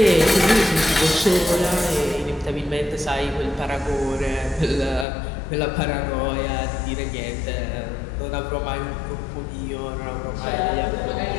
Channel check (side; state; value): right; drops out; at 5.1 s